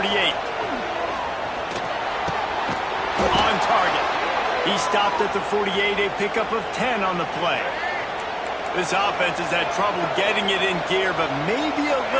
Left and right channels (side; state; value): both; identical; correlation 1.00